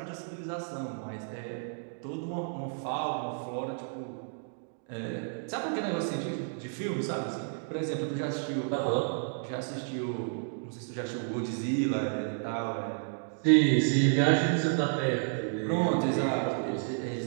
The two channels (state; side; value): silent; left; digital silence